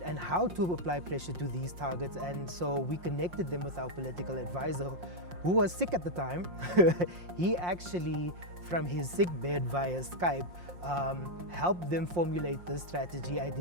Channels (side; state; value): left; late; 5.6 ms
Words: how to apply pressure to these targets. And so we connected them with our political advisor, who was sick at the time. He actually, from his sick bed via Skype, helped them formulate this strategy,